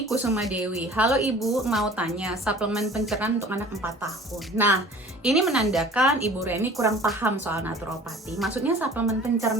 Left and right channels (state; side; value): normal; both; correlation 0.46